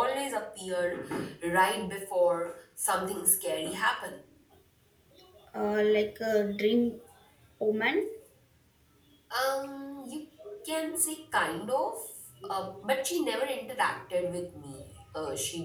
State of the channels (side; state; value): both; identical; correlation 1.00